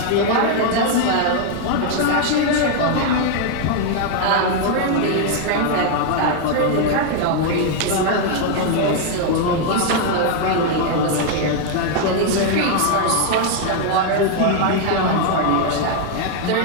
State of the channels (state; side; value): different; both; correlation 0.00